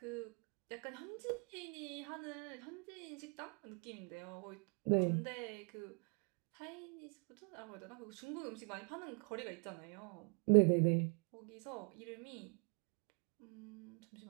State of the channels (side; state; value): left; quieter; 36.9 dB